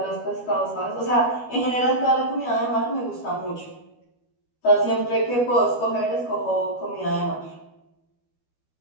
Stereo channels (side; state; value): right; late; 12 ms